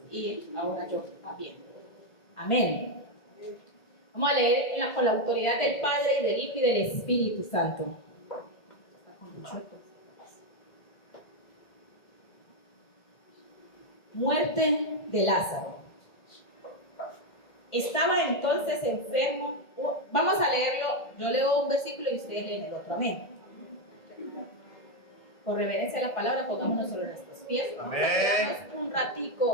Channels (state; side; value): late; right; 1.5 ms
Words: y ahora yo también. Amén. Vamos a leer con la autoridad del Padre y del Hijo y del Espíritu Santo. Muerte de Lázaro. Estaba entonces enfermo. Vamos a leerlo. Yo leo un versículo y ustedes leen el otro. Amén. Por reverencia a la palabra, pongámonos sobre nuestros pies. Amén. Vamos a quedarnos un